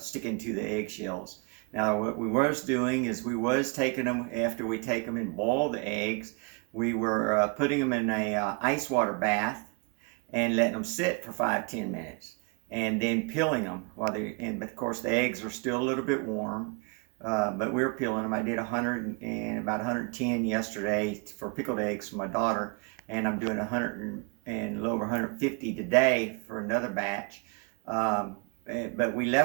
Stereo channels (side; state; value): left; quieter; 32.1 dB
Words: to the eggshells. Now what we was doing is we was taking them, after we take them and boil the eggs, we were putting them in a ice water bath and letting them sit for 5-10 minutes, and then peeling them but of course the eggs are still a little bit warm, but we were peeling them. I did 100 and about 110 yesterday for pickled eggs for my daughter, and I'm doing 100 and a little over 150 today for another batch. But we